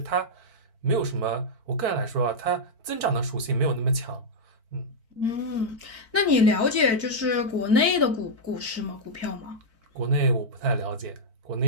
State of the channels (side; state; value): left; late; 4.5 ms